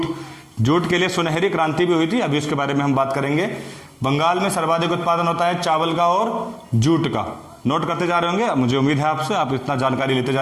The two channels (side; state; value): both; identical; correlation 1.00